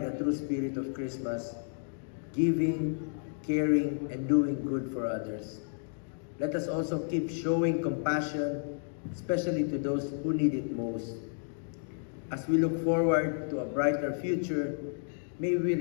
true spirit of Christmas, giving, caring, and doing good for others. Let us also keep showing compassion, especially to those who need it most. As we look forward to a brighter future, may we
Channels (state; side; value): silent; right; digital silence